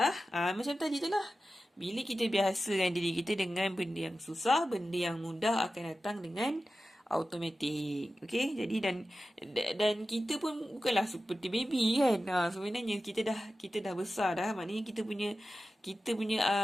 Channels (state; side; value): normal; both; correlation 0.94